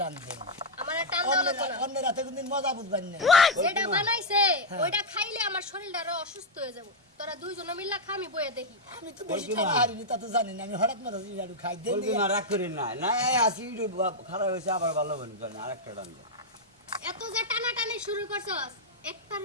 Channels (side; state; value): both; normal; correlation -0.02